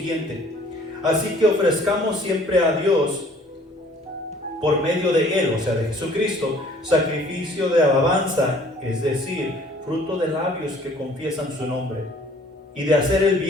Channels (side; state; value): both; normal; correlation 0.55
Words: así que ofrezcamos siempre a Dios por medio de Él, o sea de Jesucristo, sacrificio de alabanza, es decir, fruto de labios que confiesan su nombre, y de hacer el